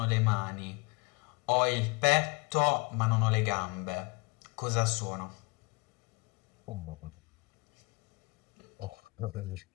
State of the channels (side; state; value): right; quieter; 28.2 dB